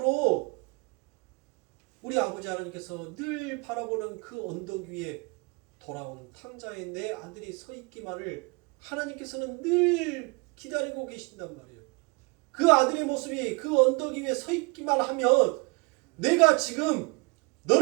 우리 아버지 하나님께서 늘 바라보는 그 언덕 위에 돌아온 탕자의 내 아들이 서 있기만을 하나님께서는 늘 기다리고 계신단 말이에요. 그 아들의 모습이 그 언덕 위에 서 있기만 하면 내가 지금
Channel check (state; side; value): quieter; left; 28.6 dB